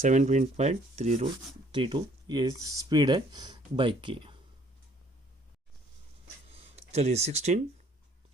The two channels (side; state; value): both; normal; correlation 0.60